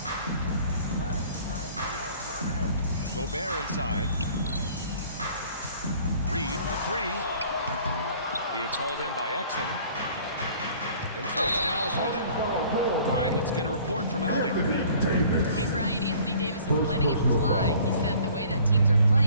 Gobert inside. Reed for 3. It's hauled in by Exum. And so it's Dallas with it. All right, let's get a report from Allie. Hey, Brian, Anthony Davis is letting it fly. He said, the way that teams are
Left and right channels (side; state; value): both; inverted; correlation -0.53